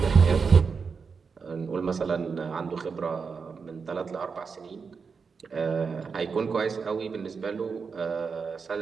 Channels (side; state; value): left; quieter; 5.4 dB